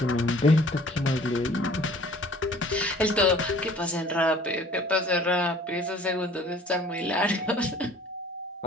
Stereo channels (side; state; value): both; normal; correlation 0.51